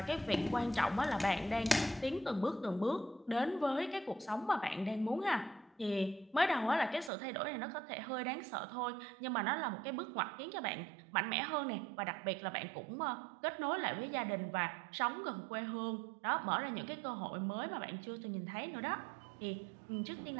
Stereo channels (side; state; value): left; drops out; at 7.1 s